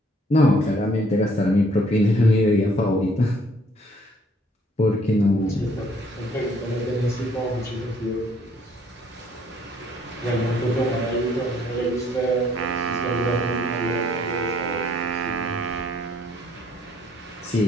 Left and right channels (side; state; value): both; normal; correlation 0.63